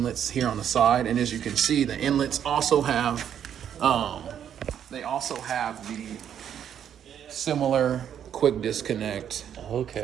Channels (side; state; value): left; quieter; 9.2 dB